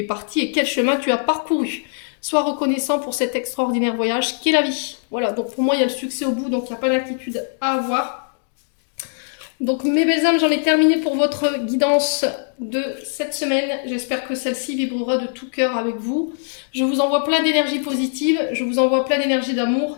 parti et quel chemin tu as parcouru. Sois reconnaissant pour cet extraordinaire voyage qu'est la vie. Voilà. Donc pour moi, il y a le succès au bout. Donc il n'y a pas d'inquiétude à avoir. Donc mes belles âmes, j'en ai terminé pour votre guidance de cette semaine. J'espère que celle-ci vibrera de tout cœur avec vous. Je vous envoie plein d'énergie positive, je vous envoie plein d'énergie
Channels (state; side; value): silent; right; digital silence